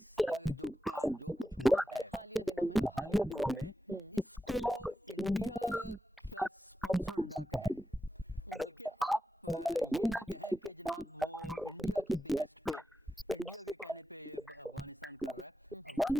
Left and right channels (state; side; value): normal; both; correlation 0.92